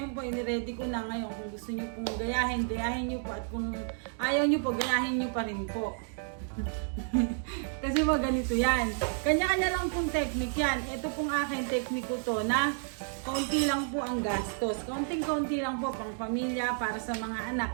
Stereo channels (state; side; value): silent; left; 57 dB below the other